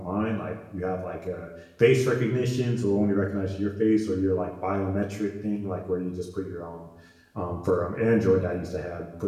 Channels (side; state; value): both; identical; correlation 1.00